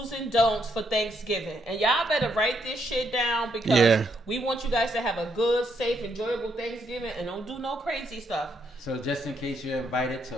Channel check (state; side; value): normal; both; correlation 0.75